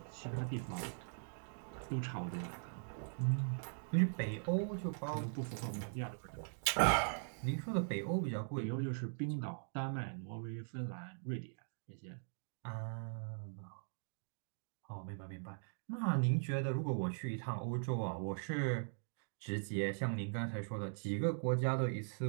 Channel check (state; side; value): silent; left; digital silence